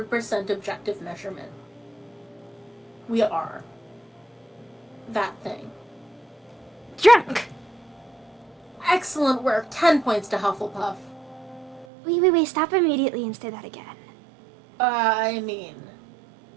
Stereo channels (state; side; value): drops out; left; at 11.9 s